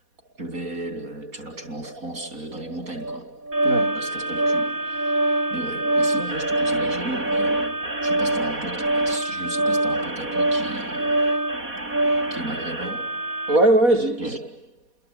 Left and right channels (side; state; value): left; late; 4.2 ms